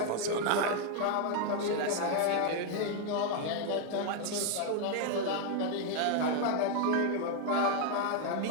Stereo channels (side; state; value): both; different; correlation 0.01